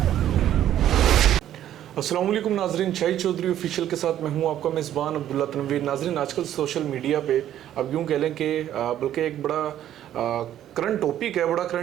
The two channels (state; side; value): quieter; left; 11.5 dB